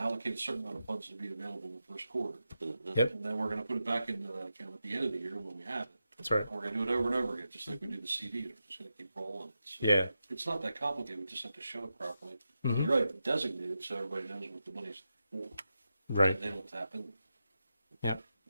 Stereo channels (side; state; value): both; inverted; correlation -0.89